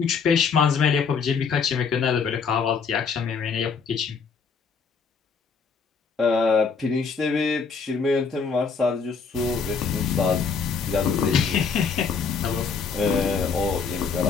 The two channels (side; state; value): right; quieter; 5.5 dB